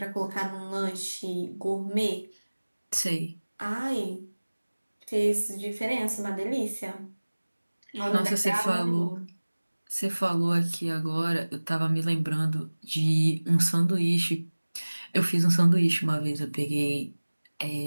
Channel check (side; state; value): both; inverted; correlation -1.00